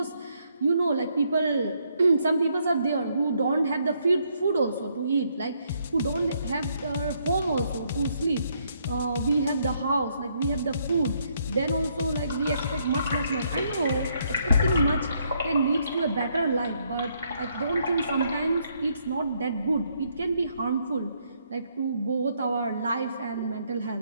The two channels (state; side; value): inverted; both; correlation -0.72